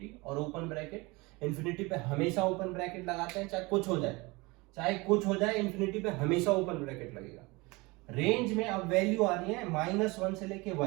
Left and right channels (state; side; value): quieter; left; 24.4 dB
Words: और ओपन ब्रैकेट। इन्फिनिटी पे हमेशा ओपन ब्रैकेट लगाते हैं, चाहे कुछ हो जाए, चाहे कुछ हो जाए, इन्फिनिटी पे हमेशा ओपन ब्रैकेट लगेगा। रेंज में अब वैल्यू आ रही है -1 से लेके